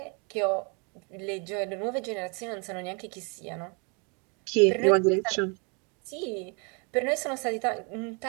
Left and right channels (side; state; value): left; quieter; 34.6 dB